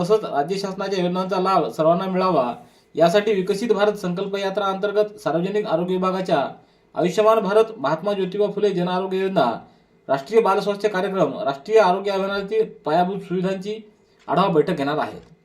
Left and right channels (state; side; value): identical; both; correlation 1.00